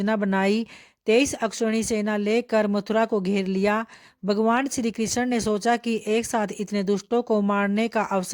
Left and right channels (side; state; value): both; identical; correlation 1.00